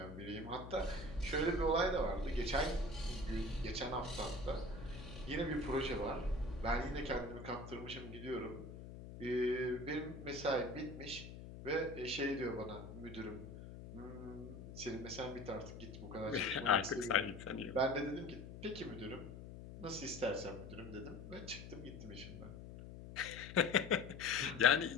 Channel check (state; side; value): noise; left; hum, 12 dB below the sound